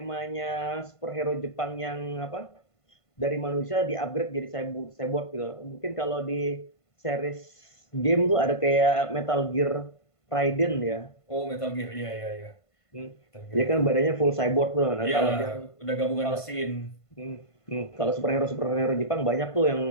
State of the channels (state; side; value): late; right; 1.5 ms